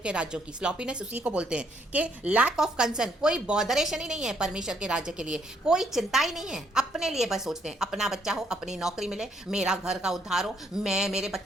राज्यों की। स्लॉपीनेस उसी को बोलते हैं कि लैक ऑफ कंसर्न, कोई बॉदरेशन ही नहीं है परमेश्वर के राज्य के लिए, कोई चिंता ही नहीं है। अपने लिए बस सोचते हैं, अपना बच्चा हो, अपनी नौकरी मिले, मेरा घर का उद्धार हो, मेरे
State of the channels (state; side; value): normal; both; correlation 0.71